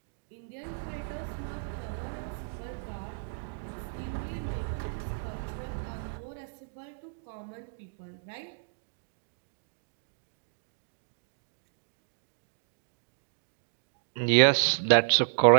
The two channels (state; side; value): silent; left; digital silence